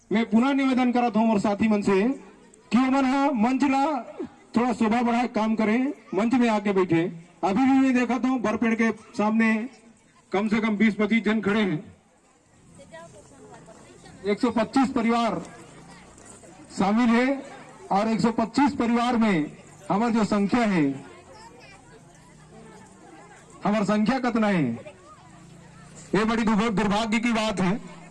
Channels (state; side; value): identical; both; correlation 1.00